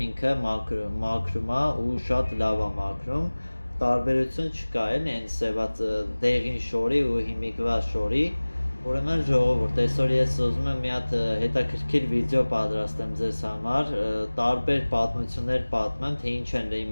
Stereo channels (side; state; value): both; inverted; correlation -1.00